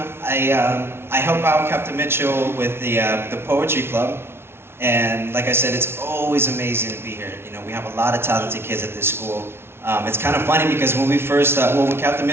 I help out Captain Mitchell with the Poetry Club. And like I said, it's always amazing to be here. You know, we have a lot of talented kids at this school. It's kind of funny because when we first, when Captain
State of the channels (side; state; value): left; late; 0.12 ms